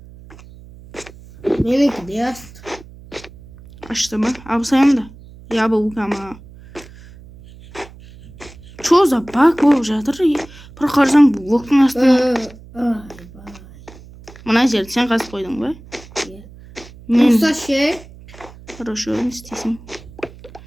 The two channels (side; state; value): right; noise; hum, 20 dB below the sound